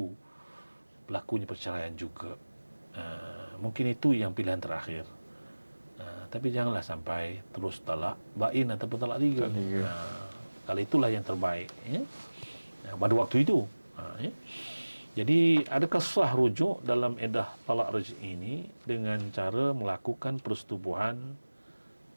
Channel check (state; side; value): inverted; both; correlation -1.00